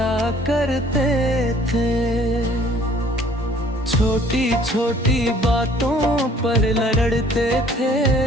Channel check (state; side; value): normal; both; correlation 0.56